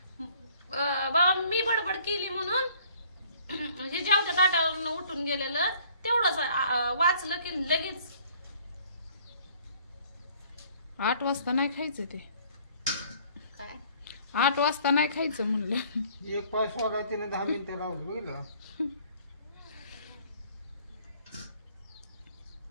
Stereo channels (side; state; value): both; inverted; correlation -0.57